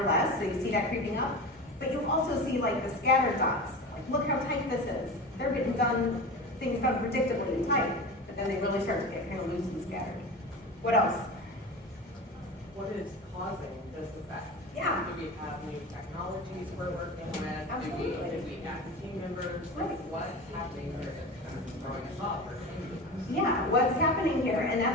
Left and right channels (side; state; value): both; normal; correlation 0.29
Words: less. So you see that creeping up. But you also see like the scattered dots. Like, look how tight this is. They're getting things done predictably and tight. But then they really start to get kind of loose and scattered. What else? What is causing this effect? Yeah. Do we have new technologies we're working with? Absolutely. Do we add team members? Like, what's happening here that's kind of throwing us off or changing us? Yeah, what's happening here? And